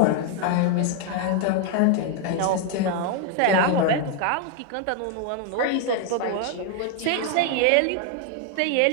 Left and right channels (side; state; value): both; different; correlation 0.00